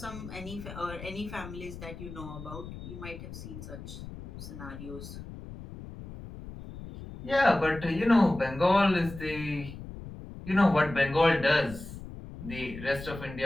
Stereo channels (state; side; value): noise; left; rumble, 12 dB below the sound